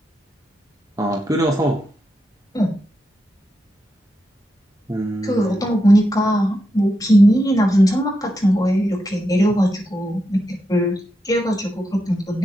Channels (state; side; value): normal; both; correlation 0.86